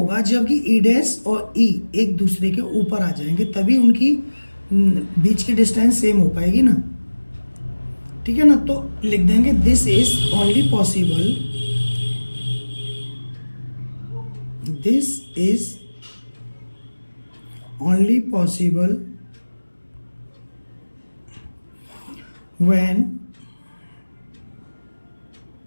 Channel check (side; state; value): both; inverted; correlation -1.00